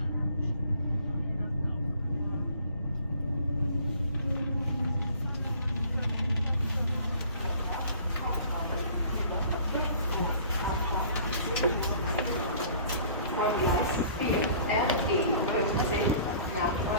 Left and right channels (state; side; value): inverted; both; correlation -0.51